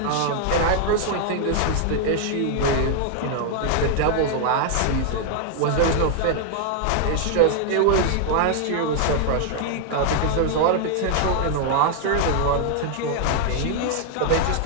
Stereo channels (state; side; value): different; both; correlation 0.00